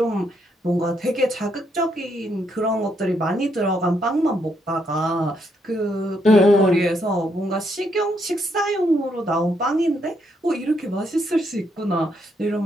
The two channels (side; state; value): both; normal; correlation 0.76